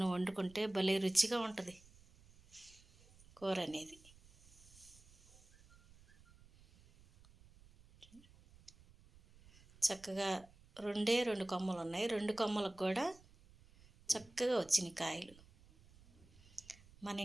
వండుకుంటే భలే రుచిగా ఉంటుంది కూర అనేది. చక్కగా 2 కొమ్మలు ఉన్నాయి. 2 కొమ్మలకు కూడా చక్కగా వచ్చినాయి కాయలు. మన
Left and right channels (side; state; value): right; noise; rumble, 25 dB below the sound